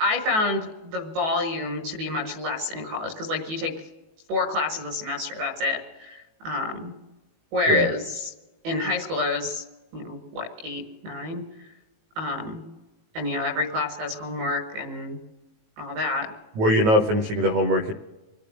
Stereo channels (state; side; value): late; left; 19 ms